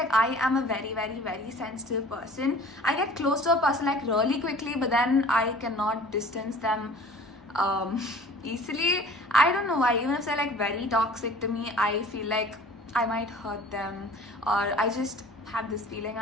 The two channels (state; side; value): normal; both; correlation 0.47